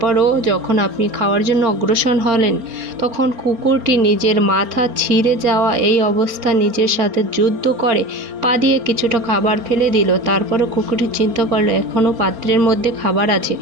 যখন আপনি খাওয়ার জন্য অগ্রসর হলেন তখন কুকুরটি নিজের মাথা ছিঁড়ে যাওয়া এই অবস্থা নিজের সাথে যুদ্ধ করে পা দিয়ে কিছুটা খাবার ফেলে দিল। তারপরও কুকুরটি চিন্তা করলো এখনও পাত্রের মধ্যে খাবার আছে,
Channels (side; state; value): left; late; 3.7 ms